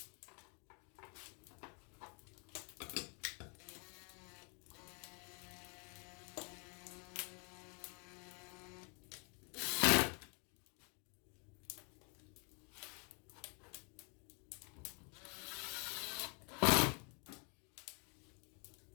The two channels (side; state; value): right; quieter; 36.3 dB